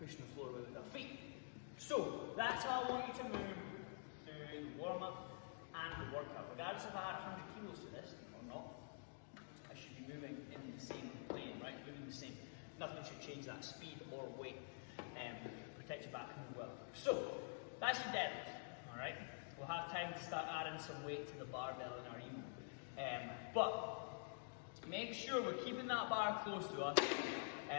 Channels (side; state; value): right; silent; digital silence